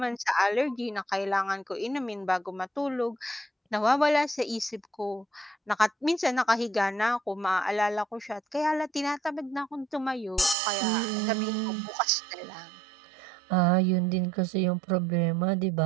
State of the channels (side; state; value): left; drops out; at 10.6 s